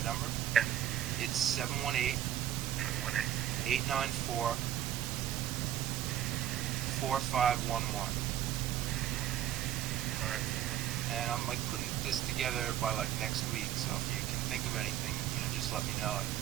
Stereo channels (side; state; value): left; quieter; 11.5 dB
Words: number? Yeah. It's 718 718. 894 4511. Alright. And I'm like putting this together by like next week. So if you can think of anything, just let me know. I